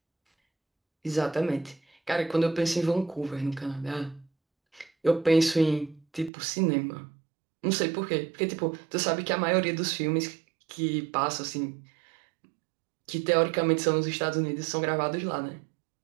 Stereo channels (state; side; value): drops out; left; at 6.3 s